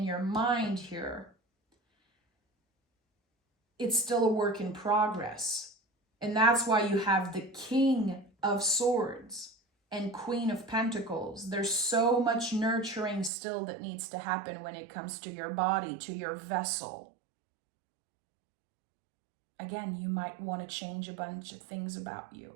your mind here, it's still a work in progress. And that's why you have the King of Swords and Queen of Pentacles. There's so much nurturing still that needs to happen when it comes to your body, to your vessel. Again, you might want to change a bunch of things about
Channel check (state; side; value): drops out; left; at 13.3 s